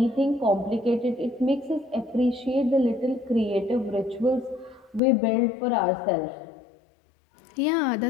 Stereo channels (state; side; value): drops out; right; at 5.0 s